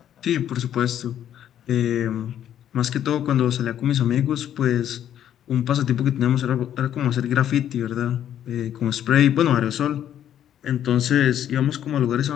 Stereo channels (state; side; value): quieter; right; 10.5 dB